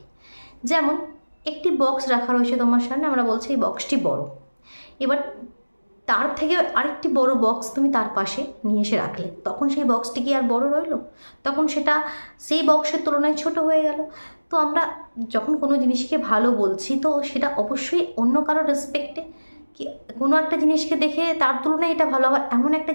যেমন একটি বক্স রাখা রয়েছে তোমার সামনে, আমরা বলছি এই বক্সটি বড়, এবার তার থেকে আরেকটি বড় বক্স তুমি তার পাশে নিয়ে এসে রাখলে, তখন সেই বক্সটি কি আর বড় রইল? তখন সেটা সেই বক্সের তুলনায় ছোট হয়ে গেল। তো আমরা যখন কোনো জিনিসকে ভালো বলছি, তো সেটা অবশ্যই অন্য কারোর রেসপেক্টে, কি কোনো একটা জিনিসকে দেখে তার তুলনায় এটা ভালো হবে, এমন একটা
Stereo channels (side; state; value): both; inverted; correlation -1.00